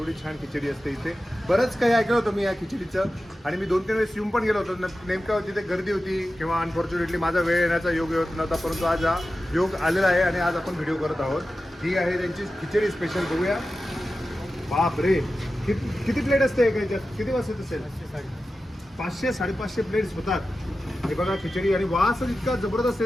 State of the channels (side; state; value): both; normal; correlation 0.93